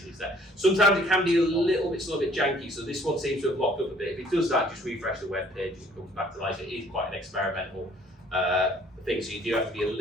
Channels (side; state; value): both; normal; correlation 0.58